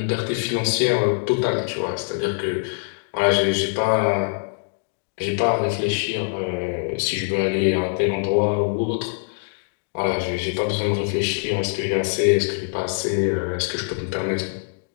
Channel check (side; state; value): right; silent; 61 dB below the other